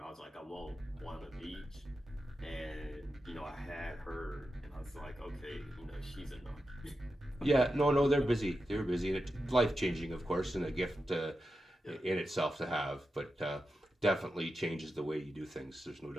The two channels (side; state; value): both; normal; correlation 0.89